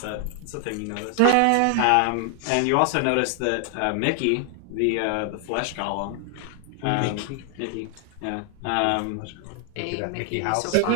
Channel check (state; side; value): different; both; correlation 0.00